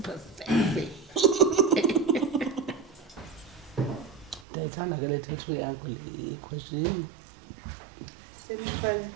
sexy. Ndiyayithanda ke le tattoo yakho le question. Semicolon.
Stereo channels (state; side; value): drops out; left; at 4.5 s